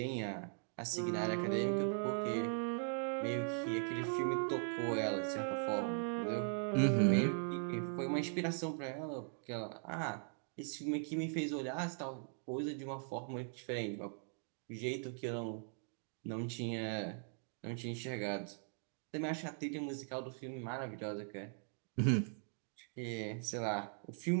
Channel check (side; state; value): left; silent; 51 dB below the other